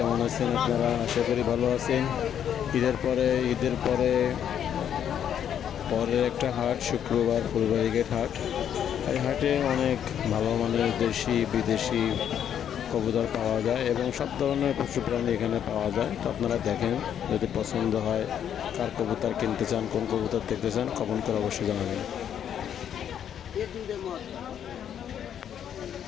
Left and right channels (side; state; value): right; quieter; 9.3 dB